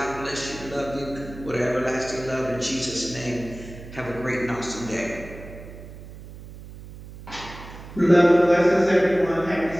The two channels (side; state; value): right; noise; hum, 15 dB below the sound